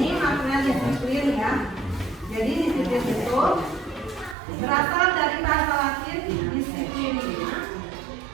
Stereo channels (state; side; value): drops out; left; at 4.4 s